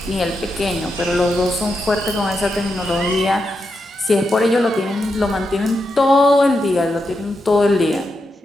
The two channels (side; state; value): both; normal; correlation 0.85